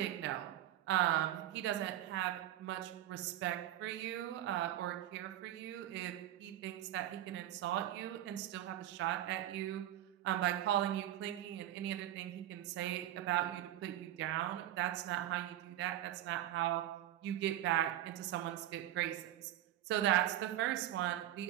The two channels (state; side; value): quieter; left; 13.0 dB